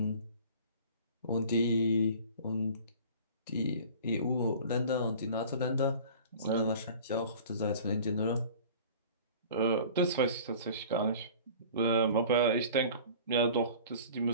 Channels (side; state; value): both; inverted; correlation -0.44